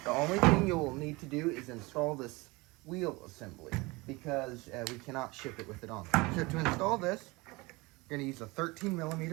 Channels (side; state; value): left; quieter; 23.9 dB